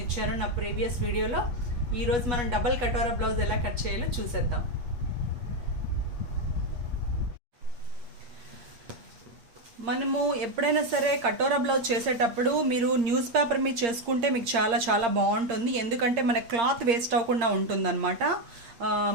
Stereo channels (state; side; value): late; left; 8.7 ms